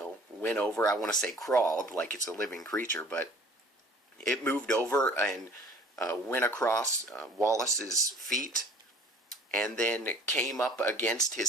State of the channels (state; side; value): normal; both; correlation 0.50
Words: went over, I want to say crawled, like it's a living creature, but it moved over and went across Wallace's feet, and then came up against